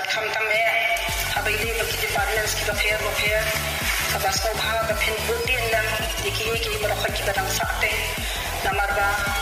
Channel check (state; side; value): identical; both; correlation 1.00